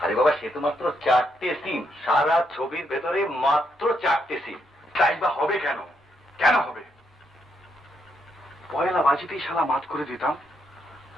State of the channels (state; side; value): normal; both; correlation 0.78